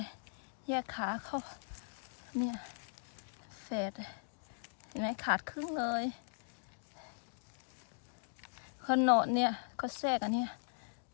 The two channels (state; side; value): silent; right; digital silence